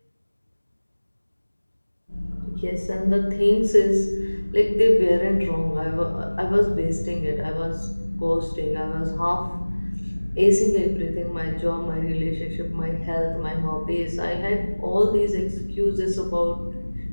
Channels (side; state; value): both; inverted; correlation -1.00